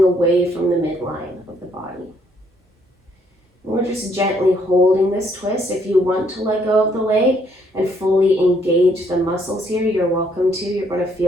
away from the midline of the body. And we're just gently holding this twist. If you want to let go of the leg and fully engage the muscles here, you're welcome to. You're going to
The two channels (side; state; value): both; normal; correlation 0.69